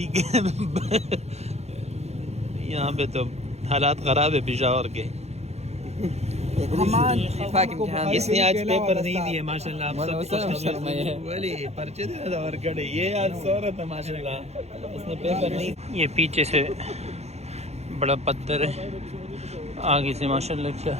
کے یہاں پہ تو حالات خراب ہے پشاور کے اس نے آج پیپر نہیں دیے ماشاء اللہ پرچے دینا اور کڑے یہ آج سورت ہے ماشاء اللہ اس نے پیپر نہیں. یہ پیچھے سے بڑا پتھر ہے آگے سے ماشاء اللہ کیا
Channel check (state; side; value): late; left; 0.31 ms